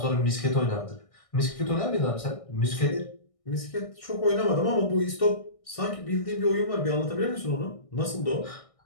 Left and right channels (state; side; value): late; right; 1.6 ms